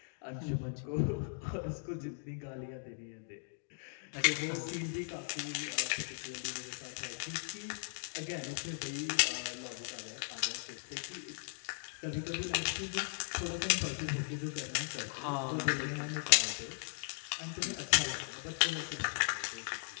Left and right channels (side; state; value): right; silent; digital silence